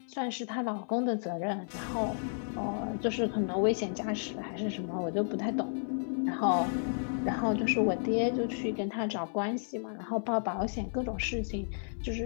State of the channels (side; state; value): right; silent; 56 dB below the other